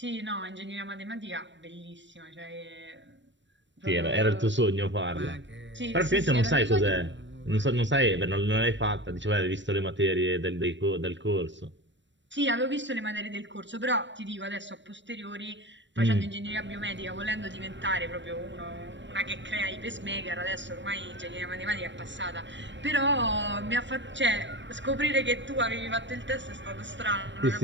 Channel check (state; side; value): late; left; 0.53 ms